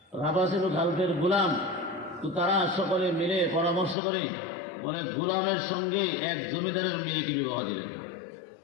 ছিল খালফের গোলাম। তো তারা সকলে মিলে পরামর্শ করে বলে গোলামের সঙ্গে এক জমিদারের মেয়েকে বিবাহ দিলেন।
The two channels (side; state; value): right; drops out; at 4.0 s